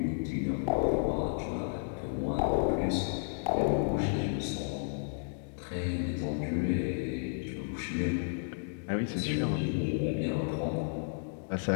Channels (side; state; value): right; silent; digital silence